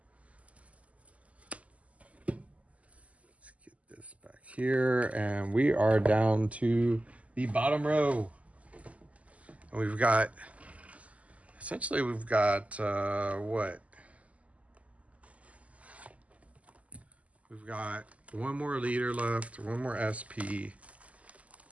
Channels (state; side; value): late; left; 0.069 ms